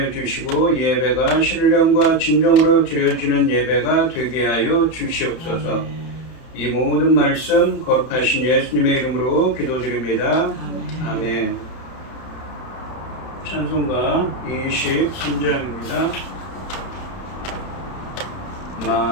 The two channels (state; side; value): late; right; 31 ms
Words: 주시고 예배가 신령과 진정으로 드려지는 예배가 되게 하여 주시옵소서. 이 모든 말씀 거룩하신 예수님의 이름으로 기도드립니다. 아멘. 찬송가 23장입니다.